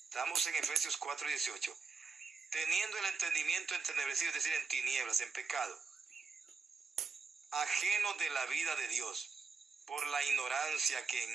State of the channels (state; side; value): quieter; left; 4.9 dB